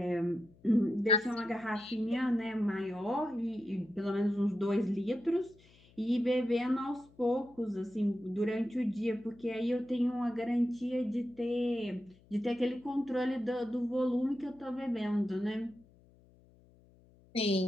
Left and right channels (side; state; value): left; noise; hum, 28 dB below the sound